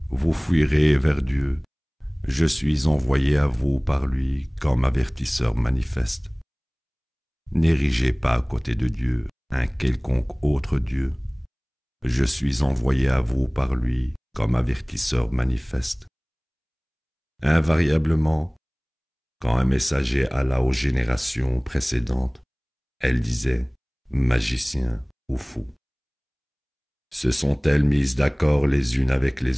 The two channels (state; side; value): identical; both; correlation 1.00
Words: Vous fuirez vers Dieu, je suis envoyé à vous par lui comme avertisseur manifeste. N'érigez pas à côté de Dieu un quelconque autre Dieu. Je suis envoyé à vous par lui comme avertisseur manifeste. Invariablement, quand un messager alla aux générations précédentes, elle disait « magicien ou fou ». Se sont-elles mises d'accord les unes avec